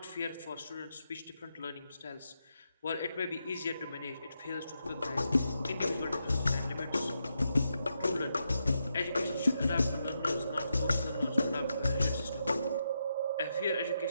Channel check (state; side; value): inverted; both; correlation -0.84